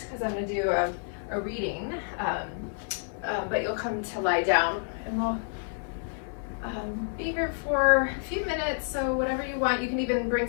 because I'm going to do a reading, but you'll come to lie down, and we'll be here for a few minutes. So whatever you want, you can even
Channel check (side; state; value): right; silent; 59 dB below the other